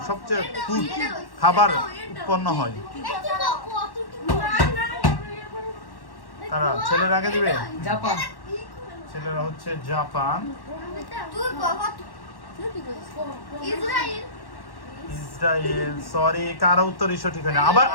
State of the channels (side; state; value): right; late; 1.1 ms